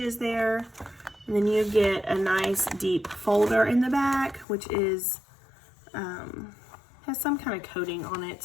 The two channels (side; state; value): right; drops out; at 4.5 s